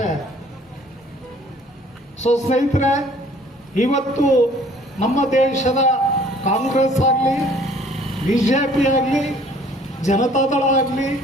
ಸ್ನೇಹಿತರೆ, ಇವತ್ತು ನಮ್ಮ ದೇಶದ ಕಾಂಗ್ರೆಸ್ ಆಗಲಿ, ಬಿಜೆಪಿ ಆಗಲಿ, ಜನತಾದಳ ಆಗಲಿ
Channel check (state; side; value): normal; both; correlation 0.56